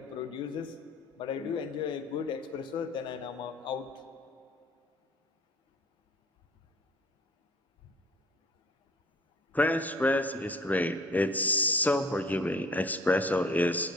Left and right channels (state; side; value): normal; both; correlation 0.50